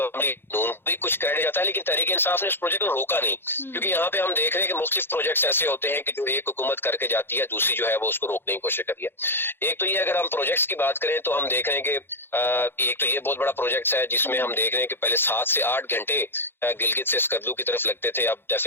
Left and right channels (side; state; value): right; late; 0.10 ms